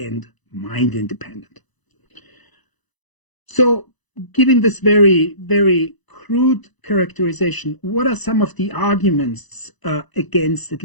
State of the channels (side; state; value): right; late; 1.0 ms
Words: mind independent. So, given this very, very crude characterization, what are some of the arguments against at